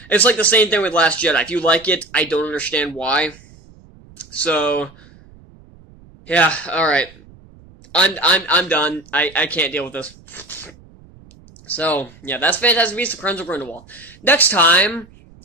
It's like the same thing with Last Jedi. If you like it, I don't understand why. So, yeah, alright. I'm done. I can't deal with this. So, yeah, that's Fantastic Beasts: The Crimes of Grindelwald. Next time,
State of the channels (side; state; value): right; noise; rumble, 25 dB below the sound